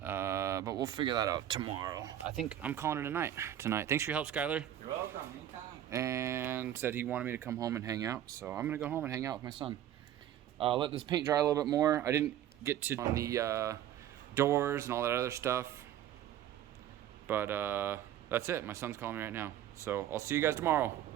we'll figure that out tomorrow. I think I'm calling it a night tonight. Thanks for your help, Skylar. You're welcome. Anytime. And said he wanted me to come home and hang out. So I'm going to go home and hang out with my son. Let this paint dry a little bit more. I didn't get to on the doors and all that other stuff. But that's it. My son's calling me right now. So I'll see you guys tomorrow.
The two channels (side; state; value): left; quieter; 11.4 dB